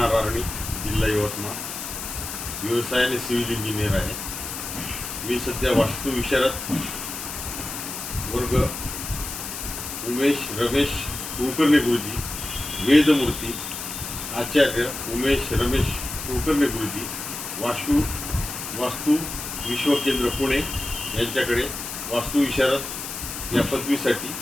आर्णी, जिल्हा यवतमाळ. व्यवसायाने सिव्हिल इंजिनियर आहे. मी सध्या वास्तू विशारद वर्ग उमेश रमेश कुलकर्णी गुरुजी, वेदमूर्ती आचार्य उमेश रमेश कुलकर्णी गुरुजी, वास्तू विश्वकेंद्र पुणे यांच्याकडे वास्तू विशारद या पदवीसाठी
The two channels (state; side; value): noise; left; hiss, 7 dB below the sound